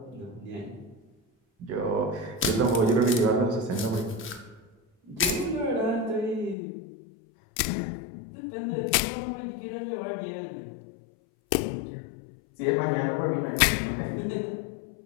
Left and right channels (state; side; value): drops out; right; at 6.6 s